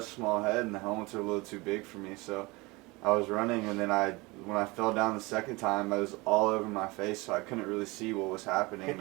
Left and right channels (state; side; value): quieter; left; 23.9 dB